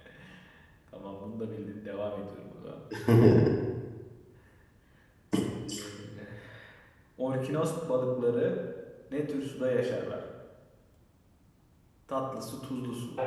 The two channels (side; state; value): both; identical; correlation 1.00